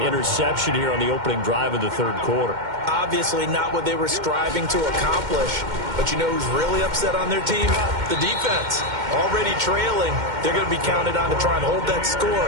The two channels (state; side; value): late; left; 2.1 ms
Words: interception here on the opening drive of the third quarter. Obviously not what they were striving to accomplish. But you know who's really upset on their team? The defense. Already trailing. They're going to be counted on to try and hold that score